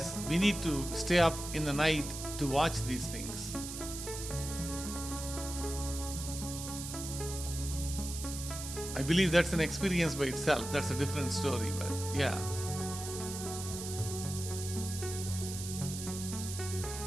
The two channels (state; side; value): noise; right; hiss, 8 dB below the sound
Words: we need to stay up in the night to watch these things. I believe that's an experience by itself. That's a different story, but yeah.